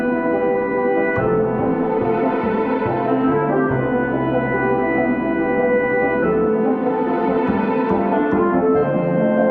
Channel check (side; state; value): both; identical; correlation 1.00